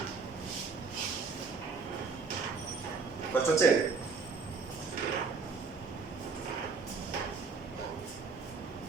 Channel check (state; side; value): quieter; left; 4.8 dB